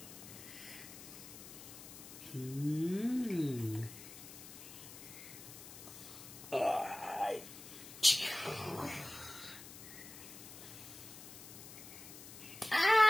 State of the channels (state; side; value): noise; left; hiss, 14 dB below the sound